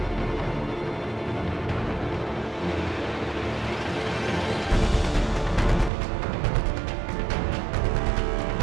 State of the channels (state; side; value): drops out; left; at 5.9 s